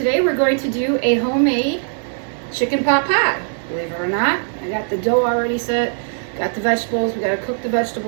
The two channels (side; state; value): left; silent; 58 dB below the other